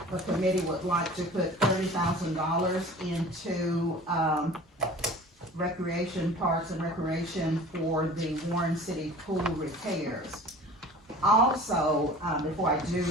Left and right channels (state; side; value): normal; both; correlation 0.42